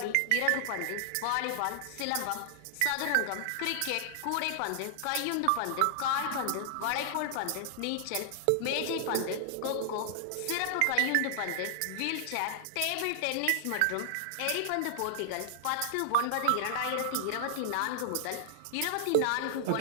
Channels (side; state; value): both; different; correlation -0.01